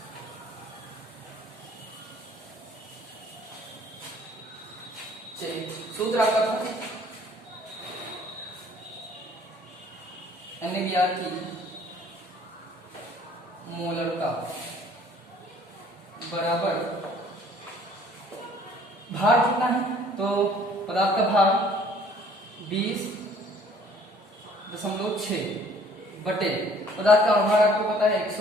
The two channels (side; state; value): both; normal; correlation 0.56